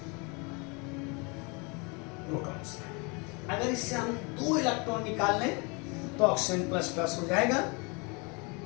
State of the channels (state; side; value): quieter; right; 30.6 dB